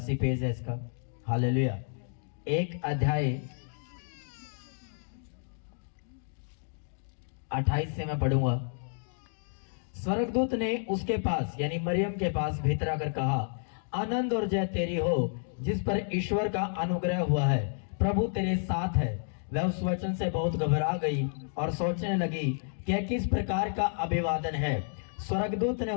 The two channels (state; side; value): silent; right; digital silence